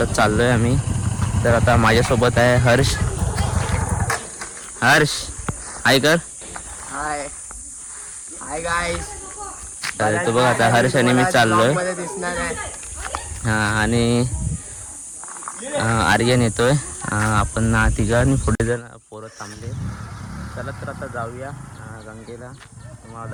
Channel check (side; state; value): both; identical; correlation 1.00